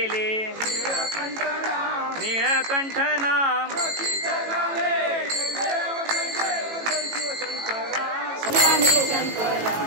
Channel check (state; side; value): late; left; 18 ms